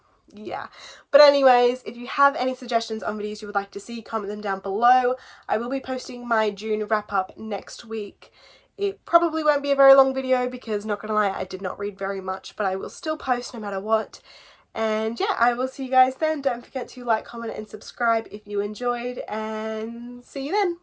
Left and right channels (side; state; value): both; identical; correlation 1.00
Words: yeah. But anyways, if you have any suggestions on videos you would like to see, comment them down below. I will be posting my June wrap up next week. It probably won't be a very long video because, not gonna lie, I did not read very much, but I will still post no matter what. And yeah, I will see you guys then. Don't forget to like, comment and subscribe if you enjoyed, and see you then.